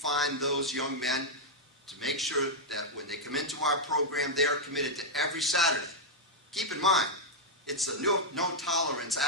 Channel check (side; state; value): both; normal; correlation -0.03